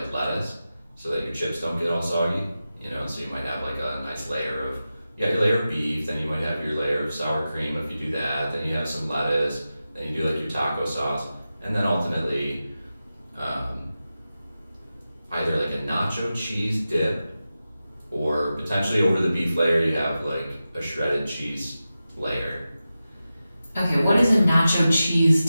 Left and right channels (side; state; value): both; inverted; correlation -0.93